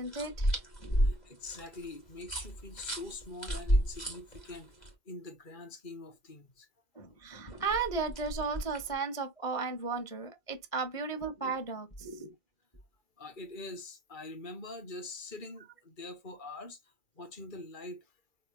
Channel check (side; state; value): right; late; 1.6 ms